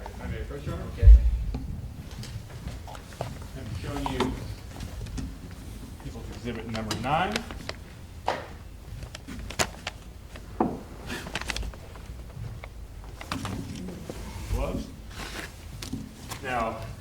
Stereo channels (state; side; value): identical; both; correlation 1.00